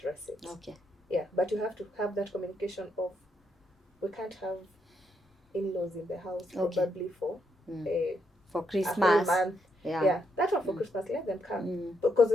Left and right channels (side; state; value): both; normal; correlation 0.78